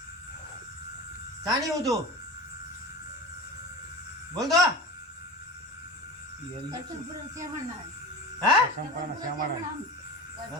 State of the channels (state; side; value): normal; both; correlation 0.30